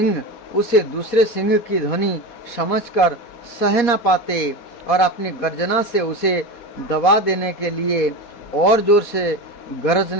उसे दूसरे सिंह की ध्वनि समझकर सह न पाते और अपनी गर्जना से उसे दबा देने के लिए और जोर से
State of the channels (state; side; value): late; right; 4.2 ms